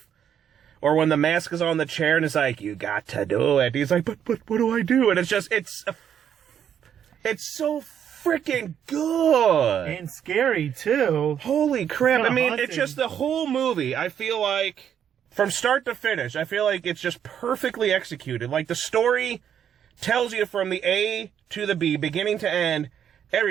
or when the mask is on the chair and it's like, you got to do it. He's like, but what do I do? And it's just, it's so freaking good. And scary, too. Holy crap. I mean, haunting. it's just the whole movie, I feel like, from start to finish, I feel like it's just perfectly executed. Like, the story tells you from the A to the B, beginning to end,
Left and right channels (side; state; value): left; quieter; 9.0 dB